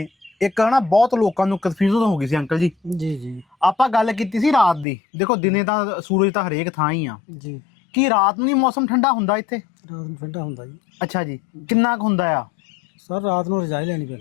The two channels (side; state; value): right; drops out; at 4.9 s